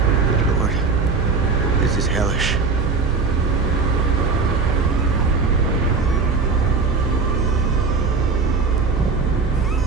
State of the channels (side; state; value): left; quieter; 4.6 dB